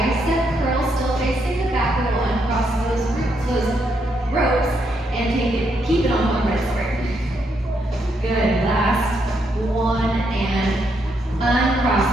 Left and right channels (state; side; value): normal; both; correlation 0.77